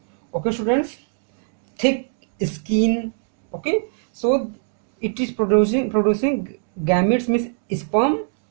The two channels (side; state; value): left; silent; digital silence